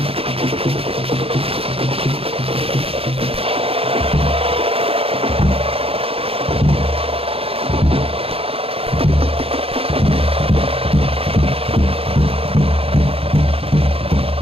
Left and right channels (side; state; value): left; late; 0.28 ms